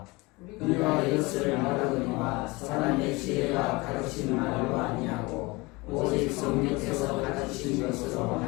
우리가 이것을 말하거니와 사람의 지혜가 가르친 말로 아니하고 오직 성령께서 가르치신 것으로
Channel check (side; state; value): right; quieter; 24.0 dB